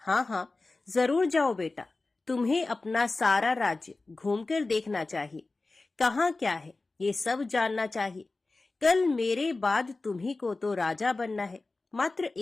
हाँ हाँ, जरूर जाओ बेटा, तुम्हें अपना सारा राज्य घूमकर देखना चाहिए। कहाँ क्या है ये सब जानना चाहिए। कल मेरे बाद तुम्ही को तो राजा बनना है। मात्र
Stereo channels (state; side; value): quieter; right; 3.4 dB